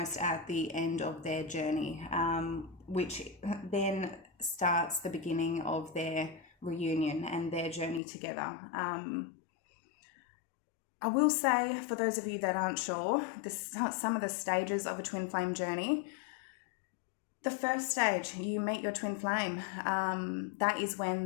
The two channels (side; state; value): right; drops out; at 8.0 s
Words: at the end of their journey, which then starts the beginning of their reunion and their journey together. I will say, for those of you that aren't sure, some of the stages of a twin flame journey. The first stage, you meet your twin flame. That is when